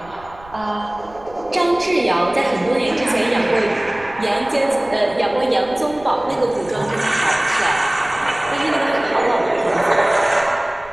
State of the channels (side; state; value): right; noise; rumble, 22 dB below the sound